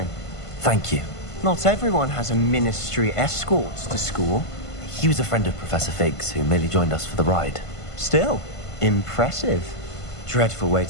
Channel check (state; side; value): late; right; 1.5 ms